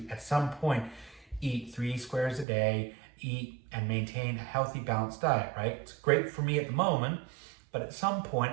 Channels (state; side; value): drops out; left; at 2.5 s